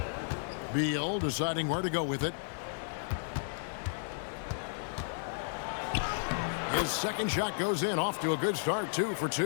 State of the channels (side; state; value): right; silent; digital silence